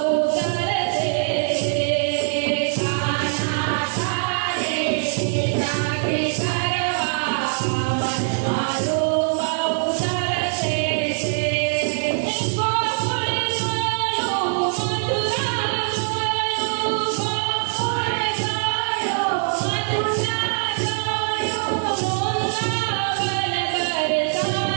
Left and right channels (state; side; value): silent; left; digital silence